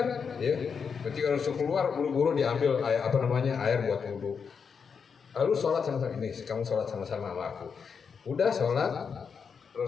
ya. Ketika Rasul keluar, buru-buru diambil air buat wudhu. Lalu sholat sama-sama, ini kamu sholat sama-sama sama aku. Udah sholat,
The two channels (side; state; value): right; quieter; 6.2 dB